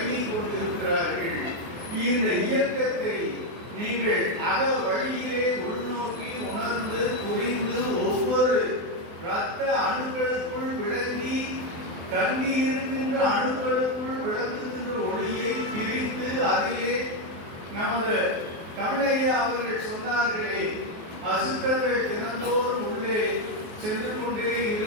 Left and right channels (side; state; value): left; late; 24 ms